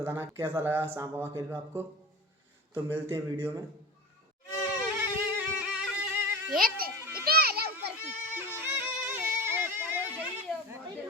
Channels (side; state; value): both; normal; correlation 0.30